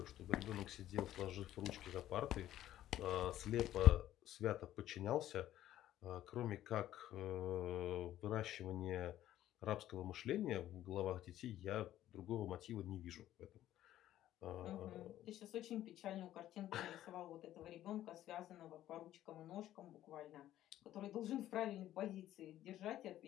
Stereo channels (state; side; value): quieter; right; 13.0 dB